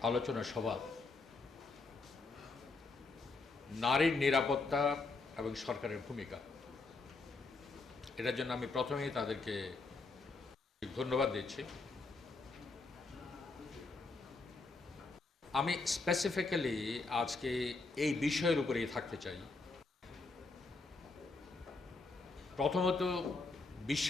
আলোচনা সভা নারীর নিরাপত্তা এবং সরকারের ভূমিকা, এটার জন্য আমি প্রথমেই তাদেরকে ধন্যবাদ দিচ্ছি। আমি স্পেসিফিক্যালি আজকে এই বিষয়ের উপরেই থাকতে চাই। প্রথমত,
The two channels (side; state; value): right; quieter; 3.7 dB